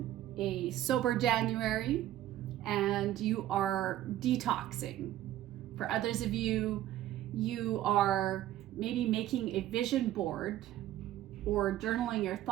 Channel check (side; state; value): left; quieter; 13.5 dB